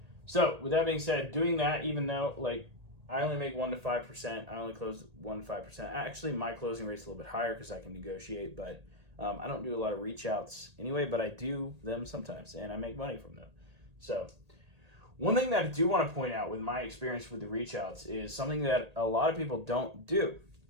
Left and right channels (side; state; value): left; late; 1.8 ms